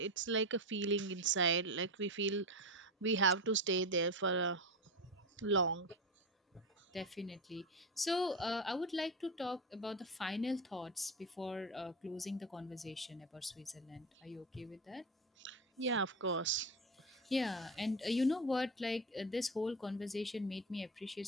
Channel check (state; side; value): normal; both; correlation 0.20